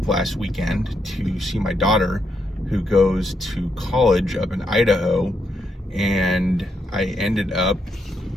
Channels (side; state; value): both; normal; correlation 0.79